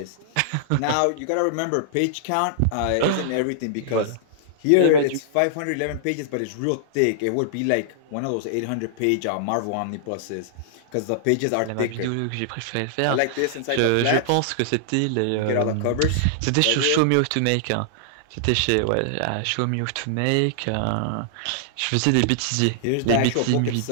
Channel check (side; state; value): both; different; correlation -0.01